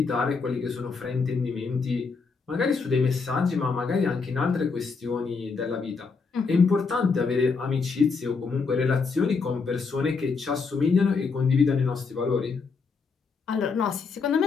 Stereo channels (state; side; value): quieter; right; 4.8 dB